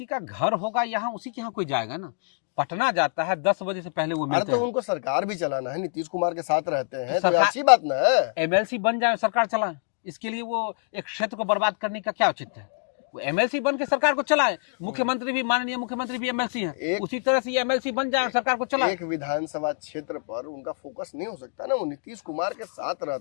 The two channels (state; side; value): silent; right; 61 dB below the other